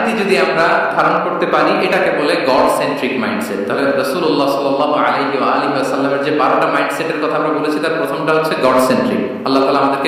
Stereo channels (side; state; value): both; identical; correlation 1.00